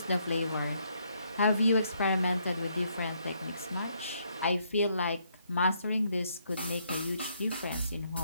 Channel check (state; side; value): inverted; both; correlation -0.72